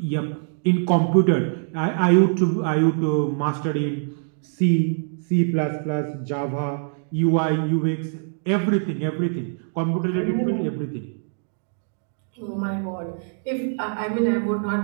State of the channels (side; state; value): left; silent; digital silence